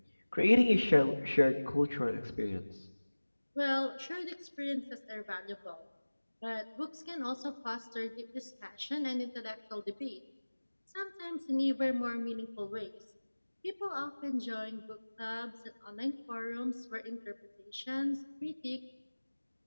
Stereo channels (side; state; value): both; inverted; correlation -1.00